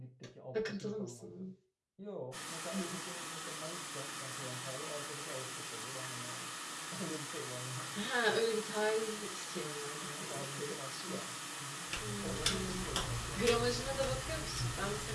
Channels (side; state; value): both; identical; correlation 1.00